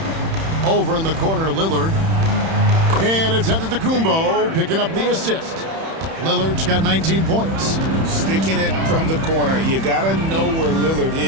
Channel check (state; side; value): late; left; 31 ms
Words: Over in the corner, Lillard. And it's Antetokounmpo picking up the assist. Lillard's got 19 points. Sticking it from the corner. You got to know where Lillard